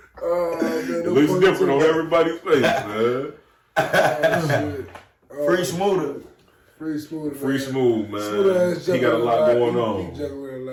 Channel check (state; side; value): identical; both; correlation 1.00